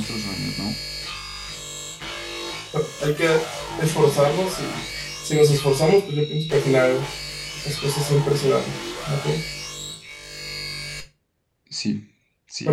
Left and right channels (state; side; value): identical; both; correlation 1.00